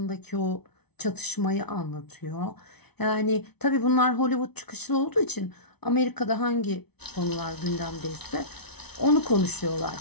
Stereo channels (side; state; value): right; late; 0.99 ms